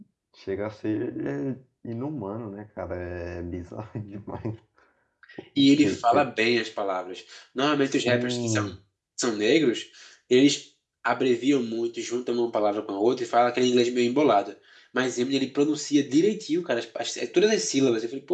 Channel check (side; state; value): both; identical; correlation 1.00